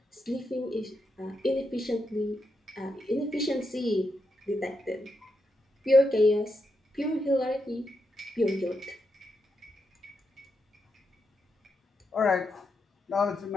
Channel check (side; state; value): both; normal; correlation 0.84